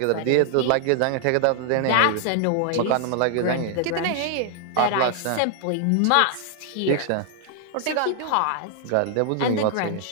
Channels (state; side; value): different; both; correlation 0.00